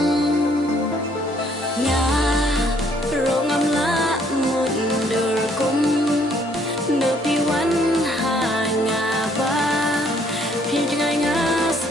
nga rong am la một đời kum nợ pi wan ha nga ba phi ngai nga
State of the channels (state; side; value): normal; both; correlation 0.65